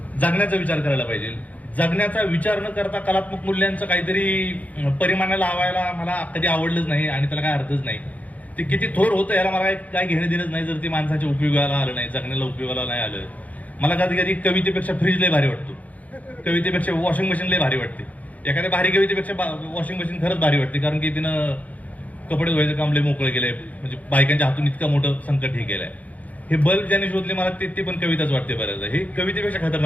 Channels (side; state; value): right; late; 0.073 ms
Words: जगण्याचा विचार करायला पाहिजे. जगण्याचा विचार न करता कलात्मक मूल्यांचं काहीतरी परिमाणाला लावायला मला कधी आवडलंच नाही आणि त्याला काय अर्थच नाही. ते किती थोर होतं याला मला काय घेणं देणंच नाही जर ते माणसाच्या उपयोगाला आलं नाही, जगण्याला उपयोगाला नाही आलं. मला कधी कधी कवितेपेक्षा फ्रीज लय भारी वाटतो, कवितेपेक्षा वॉशिंग मशीन लय भारी वाटते. एखाद्या भारी कवितेपेक्षा वॉशिंग मशीन खरंच भारी वाटते, कारण की तिनं कपडे धुवायचं काम लय मोकळं केलंय. म्हणजे बायकांच्या हातून इतकं मोठं संकट हे केलंय. हे बल्ब ज्याने शोधले मला ते पण कविताच वाटते बऱ्याचदा. हे कवितेपेक्षा